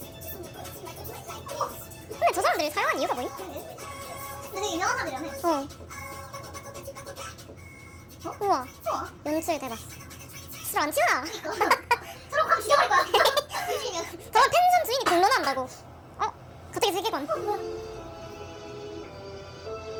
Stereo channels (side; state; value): both; identical; correlation 1.00